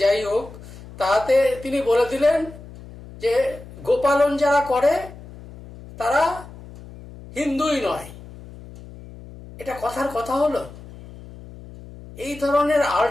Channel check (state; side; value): noise; left; hum, 17 dB below the sound